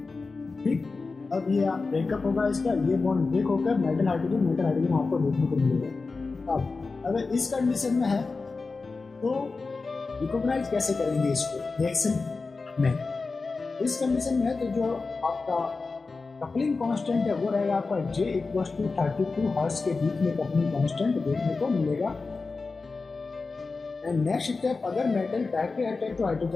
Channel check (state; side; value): quieter; right; 4.1 dB